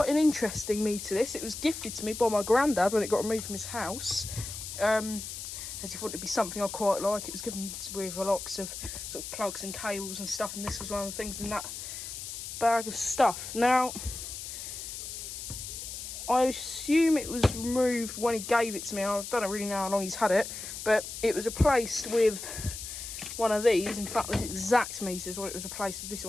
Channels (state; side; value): noise; left; hiss, 8 dB below the sound